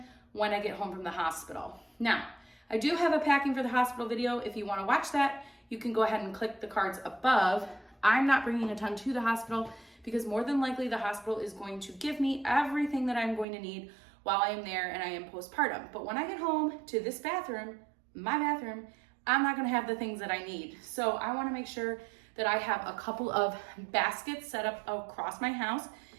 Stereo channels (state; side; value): drops out; left; at 13.5 s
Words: when I get home from the hospital. Now, I do have a packing for the hospital video. If you wanna watch that, you can go ahead and click the cards above. I'm not bringing a ton to the hospital because more than likely the hospital is going to give me everything that I'm going to need while I am there and I am postpartum. But when I get home to this bathroom, my bathroom, I'm not gonna have the things that I need. So I wanna make sure that I have a couple of baskets set up across my house